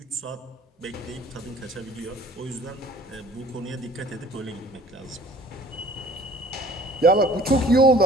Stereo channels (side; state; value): both; normal; correlation 0.51